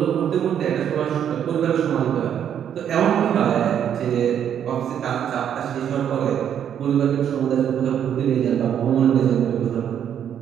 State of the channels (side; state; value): left; quieter; 9.2 dB